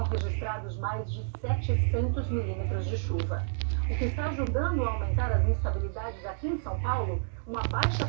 registrados mais de 700 milímetros de chuva. O que está ajudando a aumentar as instabilidades aqui em São Paulo, uma baixa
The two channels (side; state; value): left; silent; 58 dB below the other